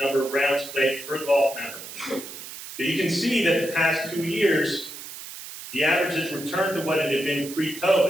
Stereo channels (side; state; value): right; noise; hiss, 12 dB below the sound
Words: of rounds played per golf member. So you can see that the past 2 years, the averages returned to what it had been